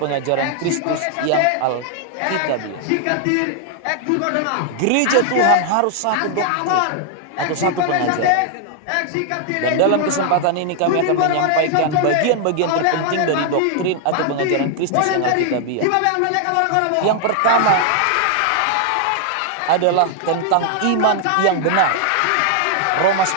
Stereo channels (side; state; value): both; different; correlation 0.00